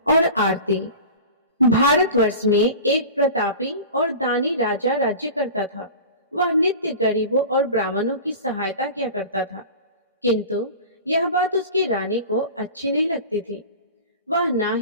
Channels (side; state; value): both; inverted; correlation -0.35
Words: और आरती। भारतवर्ष में एक प्रतापी और दानी राजा राज्य करता था। वह नित्य गरीबों और ब्राह्मणों की सहायता किया करता था, किंतु यह बात उसकी रानी को अच्छी नहीं लगती थी। वह ना